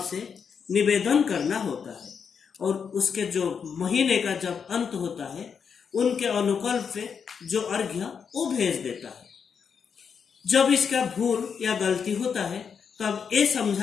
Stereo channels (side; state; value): right; quieter; 6.6 dB